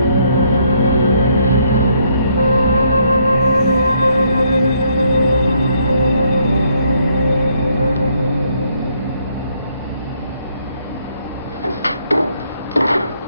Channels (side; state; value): both; inverted; correlation -0.71